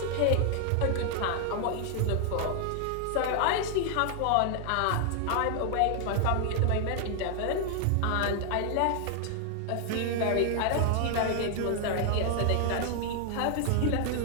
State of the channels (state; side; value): different; both; correlation 0.00